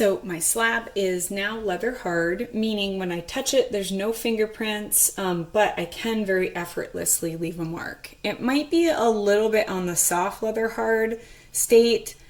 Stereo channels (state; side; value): identical; both; correlation 1.00